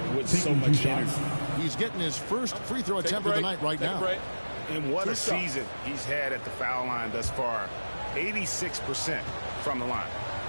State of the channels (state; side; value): inverted; both; correlation -1.00